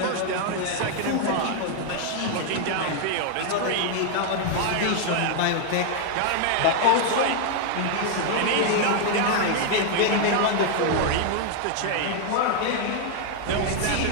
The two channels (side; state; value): both; different; correlation 0.00